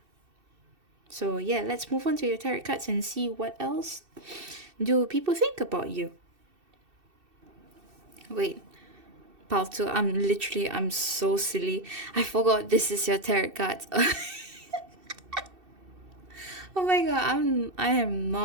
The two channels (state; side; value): late; left; 2.7 ms